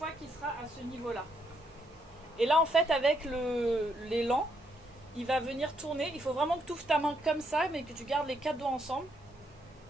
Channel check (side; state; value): both; normal; correlation 0.75